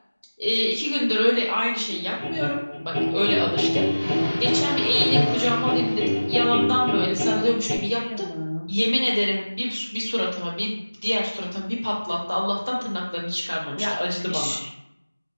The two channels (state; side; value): inverted; both; correlation -1.00